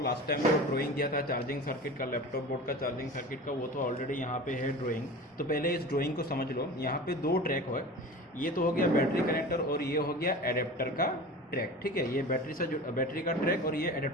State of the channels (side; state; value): both; normal; correlation 0.35